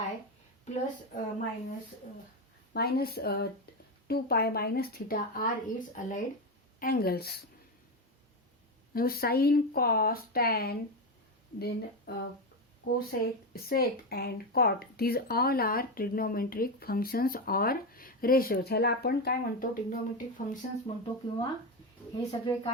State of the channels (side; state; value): both; normal; correlation 0.13